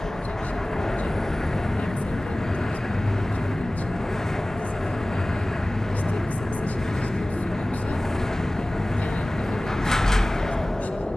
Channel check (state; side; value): normal; both; correlation 0.98